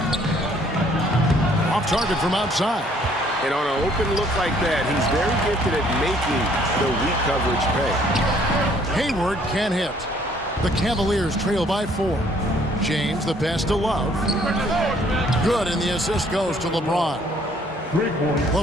Off target from outside. And on an open look like that, he's very gifted at making the weak coverage pay. Hayward can't hit. The Cavaliers trail by 4. James, the pass to Love. Good, and the assist goes to LeBron.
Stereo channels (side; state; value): both; normal; correlation 0.62